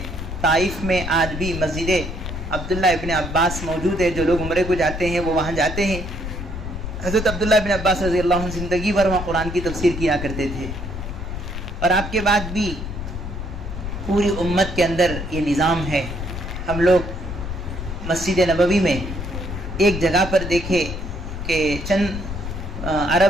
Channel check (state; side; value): noise; left; rumble, 6 dB below the sound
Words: طائف میں آج بھی مسجد عبداللہ ابن عباس موجود ہے، جو لوگ عمرے کو جاتے ہیں وہ وہاں جاتے ہیں۔ حضرت عبداللہ ابن عباس رضی اللہ عنہ زندگی بھر وہاں قرآن کی تفسیر کیا کرتے تھے۔ اور آپ کے بعد بھی پوری امت کے اندر یہ نظام ہے۔ ہم لوگ مسجد نبوی میں ایک جگہ پر دیکھے کہ چند